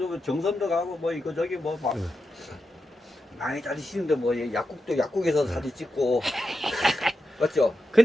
정선도 가고 뭐 이거 저기 뭐 막 많이 다니시는데 뭐 약국에서 사진 찍고 맞죠?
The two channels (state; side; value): normal; both; correlation 0.88